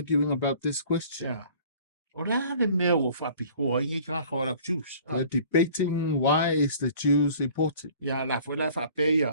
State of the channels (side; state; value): both; inverted; correlation -0.50